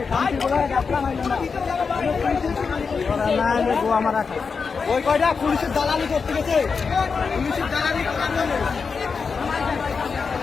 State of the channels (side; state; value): right; quieter; 5.3 dB